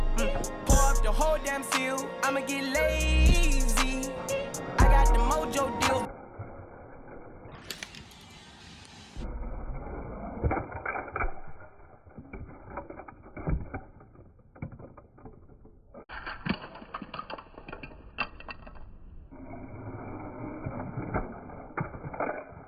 Pour up the whole damn seal. I'ma get lazy. I got the mojo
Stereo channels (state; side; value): identical; both; correlation 1.00